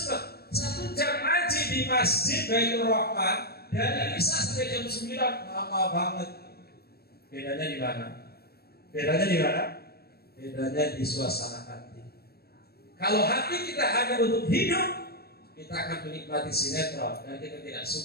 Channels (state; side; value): late; right; 0.46 ms